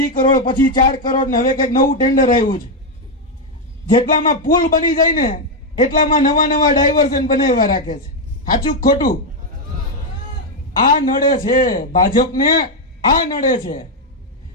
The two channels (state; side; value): normal; both; correlation 0.02